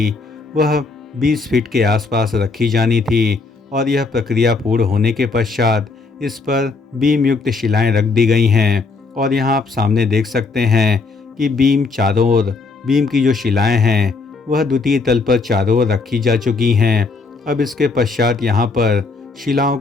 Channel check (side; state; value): right; quieter; 4.1 dB